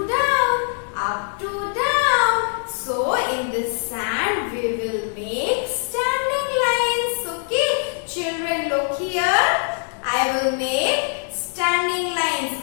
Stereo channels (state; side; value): silent; right; 62 dB below the other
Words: down, up to down. So in this sand we will make standing lines. Okay, children, look here. I will make standing lines